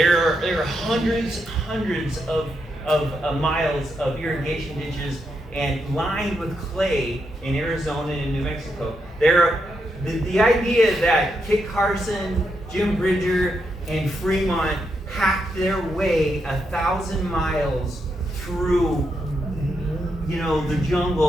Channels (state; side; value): normal; both; correlation 0.82